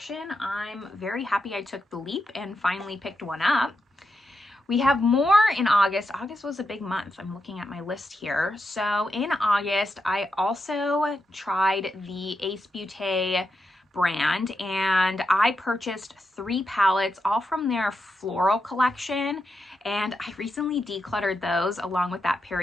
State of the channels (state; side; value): normal; both; correlation 0.86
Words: I'm very happy I took the leap and finally picked one up. We have more in August. August was a big month. I'm looking at my list here. So in August, I also tried the Ace Beauté brand and I purchased 3 palettes, all from their floral collection. And I recently decluttered those along with that